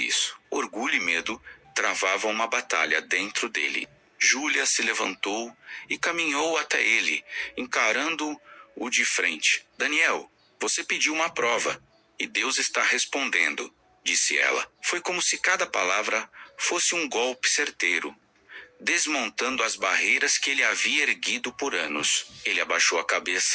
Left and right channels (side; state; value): both; identical; correlation 1.00